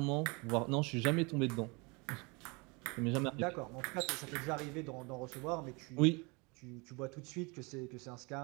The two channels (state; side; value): quieter; left; 28.5 dB